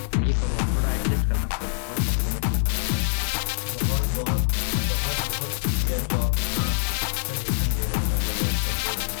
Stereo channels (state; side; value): silent; right; 58 dB below the other